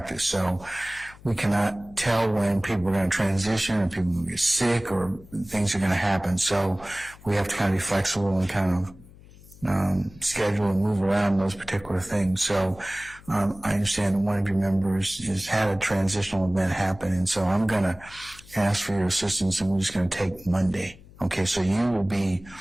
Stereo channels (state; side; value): noise; left; hum, 22 dB below the sound